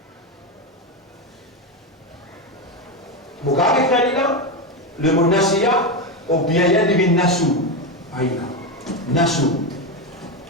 Vous avez fait là, le mot nasiya, ou bien il y a le bin nassou. Aïna. Nassou.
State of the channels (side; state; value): both; normal; correlation 0.13